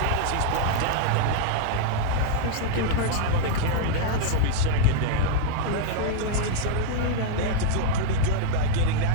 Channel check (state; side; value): different; both; correlation -0.01